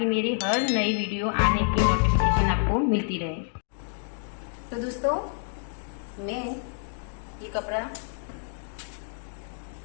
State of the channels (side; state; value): right; silent; 59 dB below the other